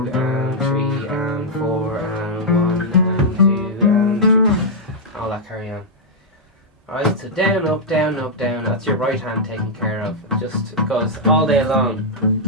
and 3 and 4 and 1 and 2 and 3. All that carry on. Alright, so down, up, down, up, down. That's your right hand taken care of. It just goes all day long,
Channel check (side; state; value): both; normal; correlation -0.05